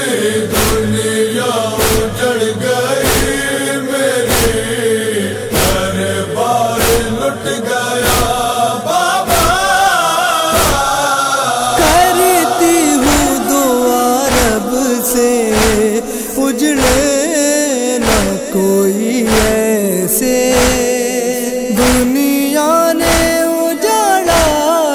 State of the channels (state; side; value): identical; both; correlation 1.00